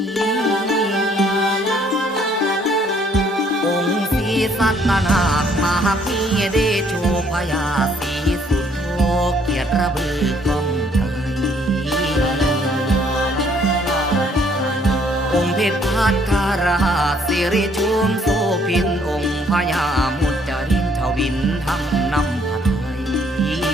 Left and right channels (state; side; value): normal; both; correlation 0.64